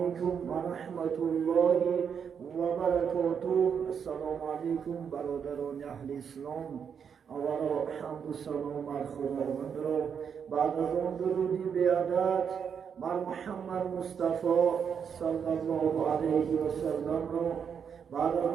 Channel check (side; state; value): left; quieter; 7.2 dB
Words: ورحمة الله وبركاته. السلام عليكم برادران أهل الإسلام. اولا حمد و سلام بر خداوند را بعد از آن درودی بیادت بر محمد مصطفی صلی الله علیه و سلم را بعد از